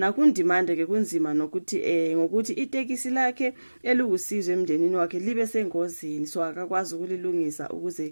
ke kunzima nokuthi ngokuthi itekisi lakhe elukusizwe emndenini wakhe libe sengozini, so akakwazi ukulilungisa ukuze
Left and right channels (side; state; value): both; inverted; correlation -1.00